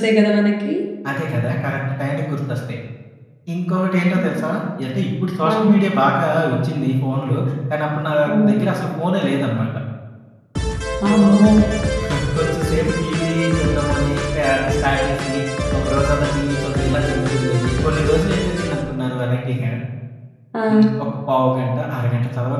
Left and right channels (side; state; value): both; identical; correlation 1.00